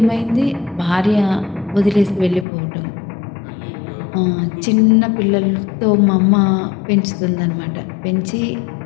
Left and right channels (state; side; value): drops out; right; at 2.5 s